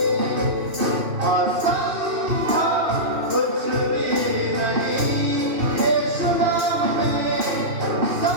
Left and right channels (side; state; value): left; late; 2.9 ms